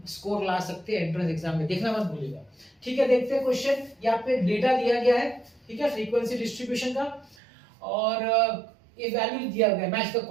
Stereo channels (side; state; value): left; drops out; at 7.4 s